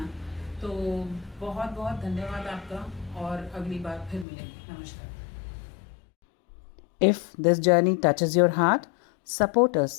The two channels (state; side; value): drops out; right; at 4.2 s